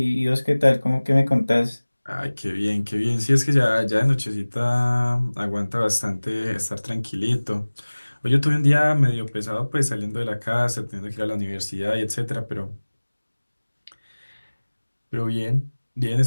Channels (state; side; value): inverted; both; correlation -1.00